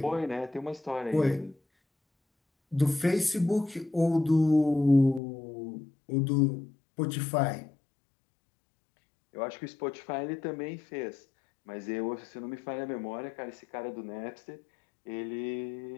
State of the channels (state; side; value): drops out; right; at 5.2 s